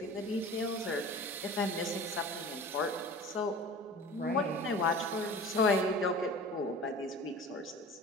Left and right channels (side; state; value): both; normal; correlation 0.39